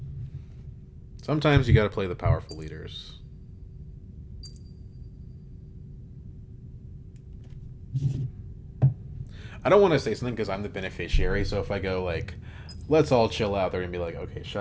Sometimes you gotta play the powerful leaders. I don't want to say something because I'm the beneficiary, so if I go, like, let's all chill out. They're gonna be like, okay,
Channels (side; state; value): both; identical; correlation 1.00